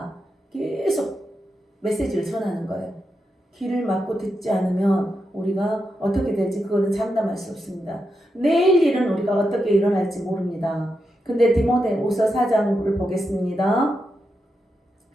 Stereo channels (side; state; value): both; normal; correlation 0.86